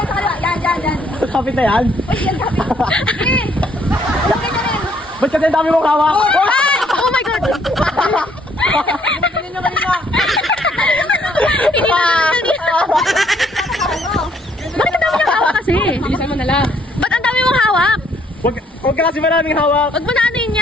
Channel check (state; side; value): normal; both; correlation 0.66